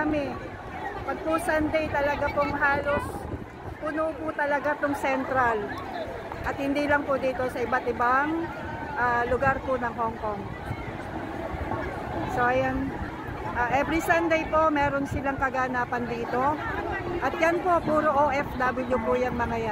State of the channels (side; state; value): both; identical; correlation 1.00